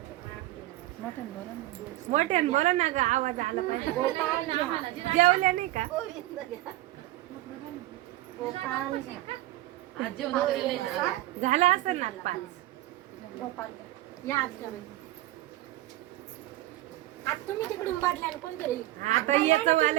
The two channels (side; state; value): left; quieter; 16.6 dB